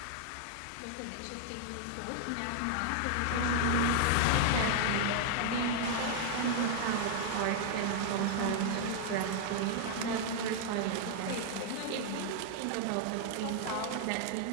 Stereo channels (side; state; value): both; different; correlation 0.00